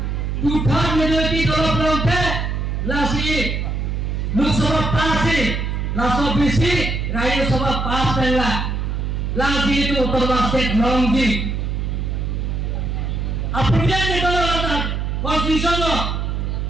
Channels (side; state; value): right; noise; hum, 1 dB below the sound